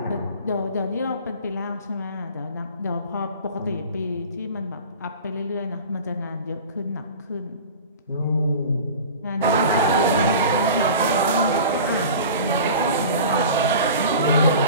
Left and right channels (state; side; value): inverted; both; correlation -0.38